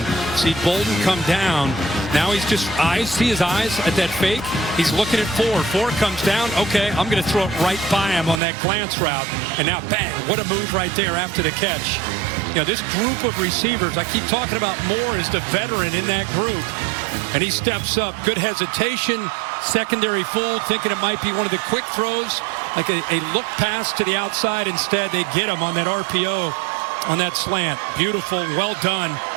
see Bolden come down. Now he's just see his eyes at that fake. He's looking at 4 comes down. Okay, I'm going to throw it right by him on that glance route, and now bang, what a move right there after the catch. You know, this group of receivers, I keep talking about Moore as the veteran in that group, and he steps up. Good hesitation, secondary fool, thinking it might be one of the quick throws, like a look pass to the outside. Instead, they get him on that RPO, on that slant. Beautiful, well done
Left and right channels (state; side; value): drops out; left; at 8.4 s